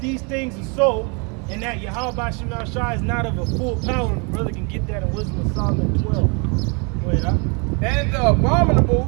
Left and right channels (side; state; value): left; quieter; 33.9 dB